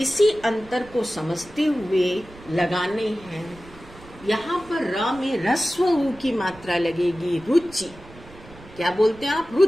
इसी अंतर को समझते हुए लगाने हैं। यहाँ पर र में ह्रस्व उ की मात्रा लगेगी, रुचि। क्या बोलते हैं आप?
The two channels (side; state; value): right; noise; rumble, 21 dB below the sound